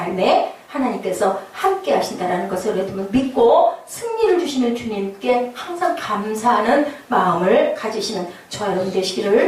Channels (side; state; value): both; identical; correlation 1.00